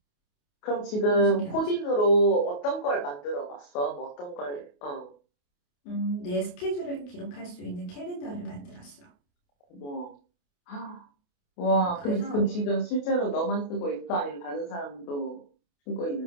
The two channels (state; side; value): late; right; 28 ms